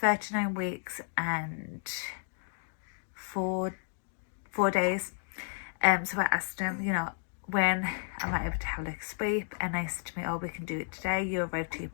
39 weeks and four days. So I asked him, when am I able to have like a sweep, and they said to me, oh, we can do it today, you arrived to your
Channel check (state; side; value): silent; right; digital silence